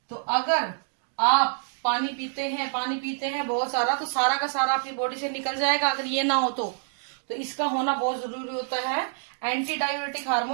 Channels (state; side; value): silent; left; digital silence